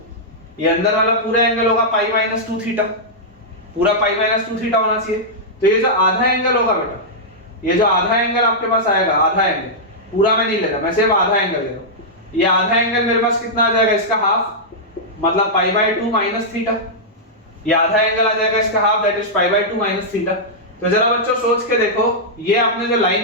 ये अंदर वाला पूरा एंगल होगा पाई माइनस 2 थीटा, पूरा पाई माइनस 2 थीटा होना चाहिए। तो ये जो आधा एंगल होगा बेटा, ये जो आधा एंगल आपके पास आएगा, आधा एंगल, पूरा मैं नहीं ले रहा, मैं सिर्फ आधा एंगल ले रहा हूं। ये आधा एंगल मेरे पास कितना आ जाएगा, इसका हाफ, मतलब पाई बाय 2 माइनस थीटा। ये आधा एंगल आ जाएगा इसका half, that is pi by 2 minus theta. तो जरा बच्चों सोच के देखो, ये आपने जो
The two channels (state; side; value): normal; both; correlation -0.09